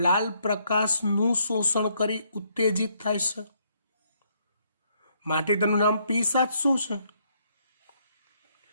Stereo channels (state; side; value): inverted; both; correlation -0.72